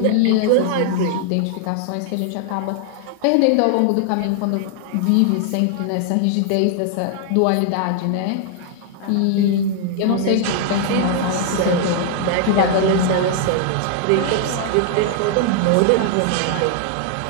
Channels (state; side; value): different; both; correlation 0.00